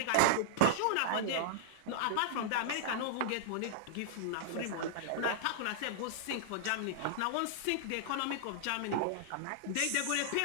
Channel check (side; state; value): both; different; correlation -0.01